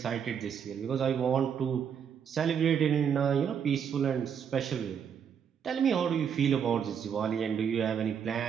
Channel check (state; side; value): quieter; left; 7.7 dB